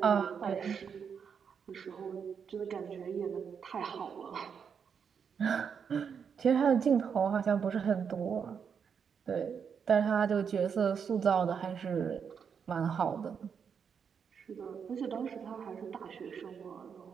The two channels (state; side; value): quieter; left; 6.8 dB